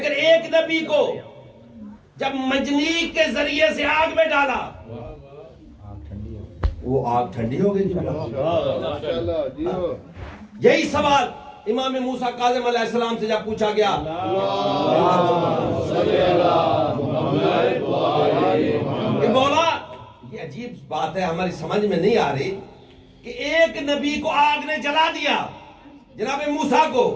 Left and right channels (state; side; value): identical; both; correlation 1.00